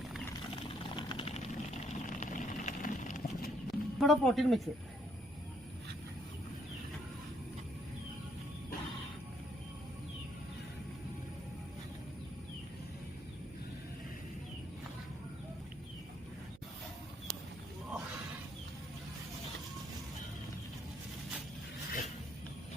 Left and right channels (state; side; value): noise; right; hum, 21 dB below the sound